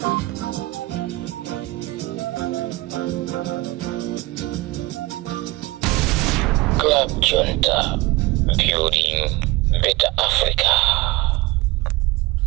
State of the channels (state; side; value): quieter; left; 20.7 dB